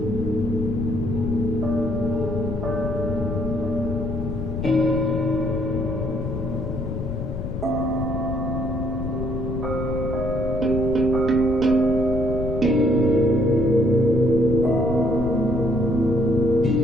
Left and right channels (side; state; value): left; noise; rumble, 5 dB below the sound